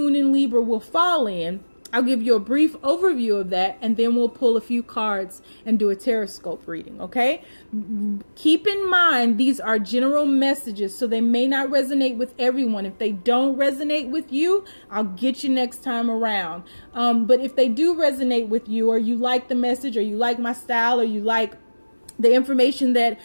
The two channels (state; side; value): inverted; both; correlation -1.00